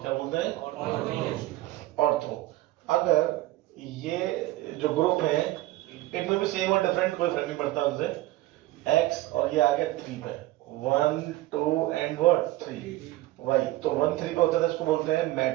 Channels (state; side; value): quieter; left; 17.1 dB